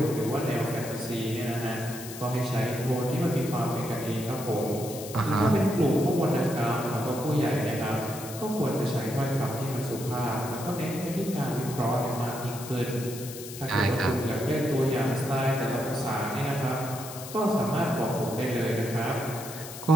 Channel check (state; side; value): noise; left; hiss, 12 dB below the sound